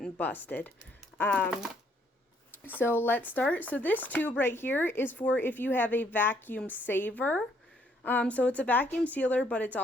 and busted. So let's start. So this tube right here is for if you have a vacuum saver. So it's a vacuum sealer, but it's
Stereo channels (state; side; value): normal; both; correlation 0.68